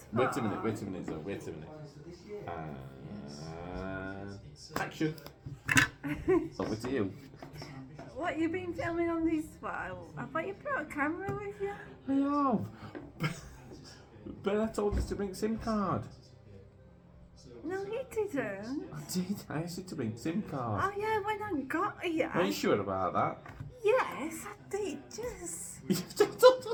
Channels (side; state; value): both; identical; correlation 1.00